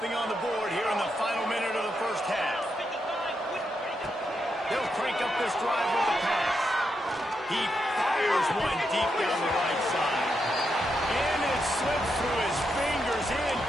on the board here in the final minute of the first half. They'll crank up this drive with the pass. He fires one deep down the right side. And it slips through his fingers,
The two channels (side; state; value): both; normal; correlation 0.83